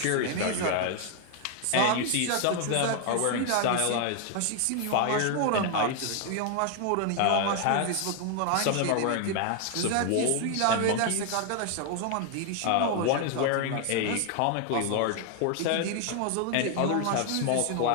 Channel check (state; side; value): different; both; correlation 0.00